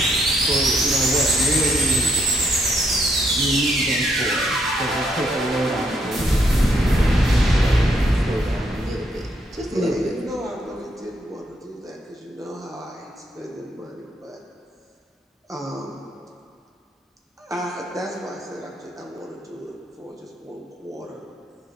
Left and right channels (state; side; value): normal; both; correlation 0.75